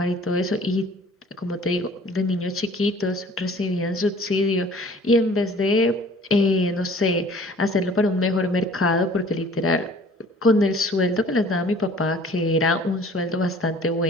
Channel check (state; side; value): normal; both; correlation 0.51